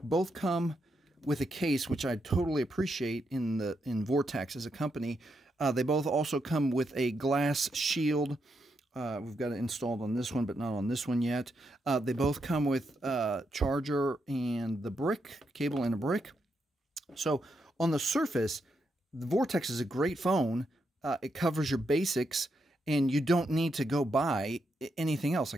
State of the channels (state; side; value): normal; both; correlation 0.82